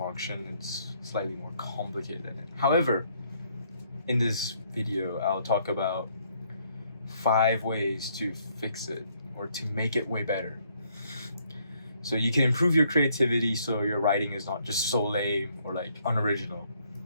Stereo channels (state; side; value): inverted; both; correlation -0.69